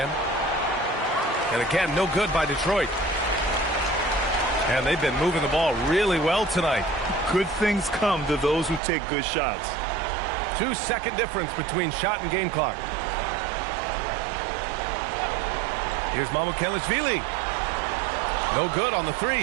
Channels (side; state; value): left; drops out; at 8.8 s